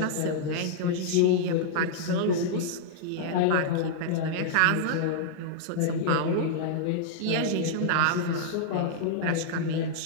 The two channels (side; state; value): both; different; correlation -0.02